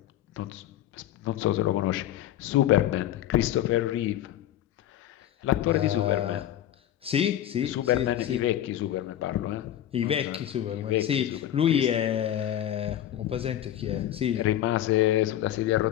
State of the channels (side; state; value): right; quieter; 11.9 dB